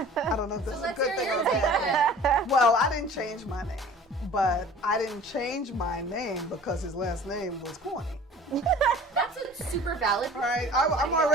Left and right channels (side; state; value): both; normal; correlation 0.45